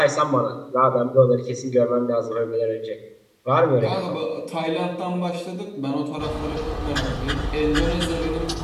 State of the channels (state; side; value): identical; both; correlation 1.00